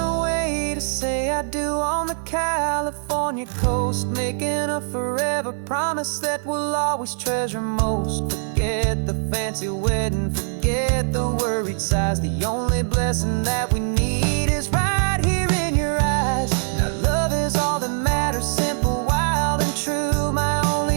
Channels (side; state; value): left; silent; digital silence